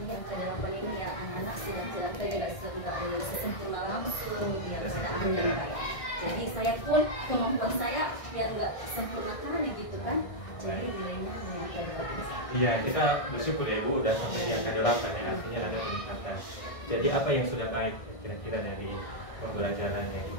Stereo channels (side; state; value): right; late; 1.6 ms